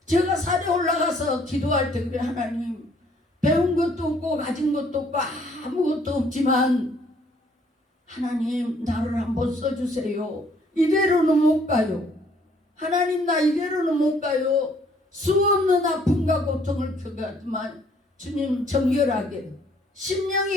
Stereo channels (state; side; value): normal; both; correlation 0.63